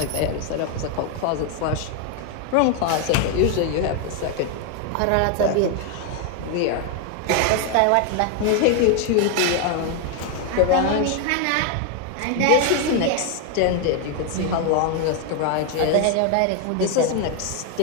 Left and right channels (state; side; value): different; both; correlation 0.01